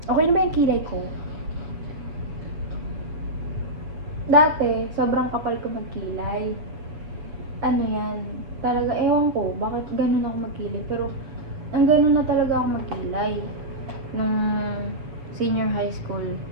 Okay na ba yung kilay ko? Dati, sobrang kapal ko magkilay. Ano yan, talaga, ewan ko, bakit ganun ako magkilay. Pero, ang ganun na talaga ako magkilay. Nung senior high school,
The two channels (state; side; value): late; left; 7.6 ms